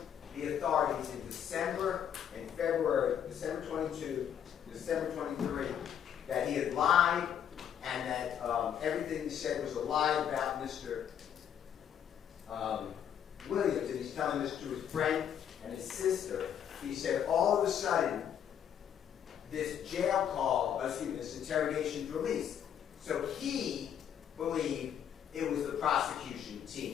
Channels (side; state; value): right; quieter; 9.1 dB